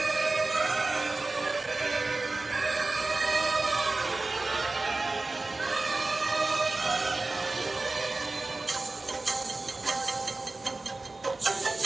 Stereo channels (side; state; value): left; quieter; 3.3 dB